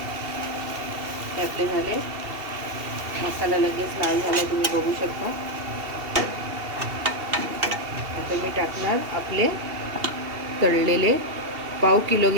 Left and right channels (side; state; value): left; late; 2.7 ms